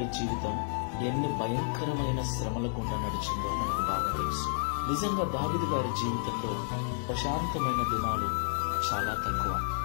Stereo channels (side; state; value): right; silent; digital silence